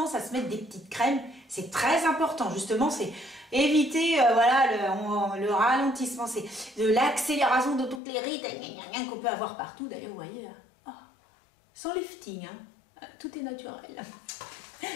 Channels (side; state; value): right; drops out; at 8.0 s